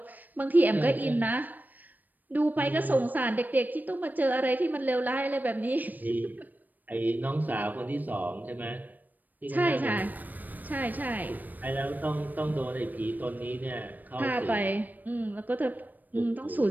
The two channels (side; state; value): left; late; 0.086 ms